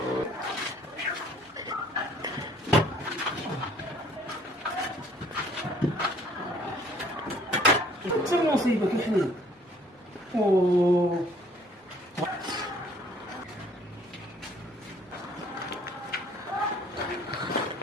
انت المصيبه كيحليك. اوه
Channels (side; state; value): both; normal; correlation 0.58